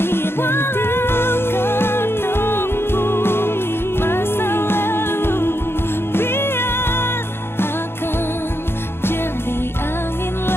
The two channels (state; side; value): late; right; 0.11 ms